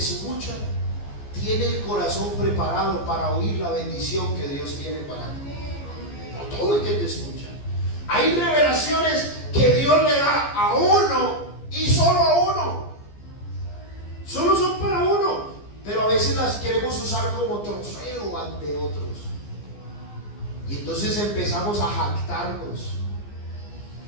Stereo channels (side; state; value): right; late; 14 ms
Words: tiene el corazón preparado para oír la bendición que Dios tiene para ti. No todo el que te escucha. Hay revelaciones que Dios le da a uno y solo a uno. Solo son para uno, pero a veces las queremos usar como trofeo ante otros. Y entonces empezamos a jactarnos.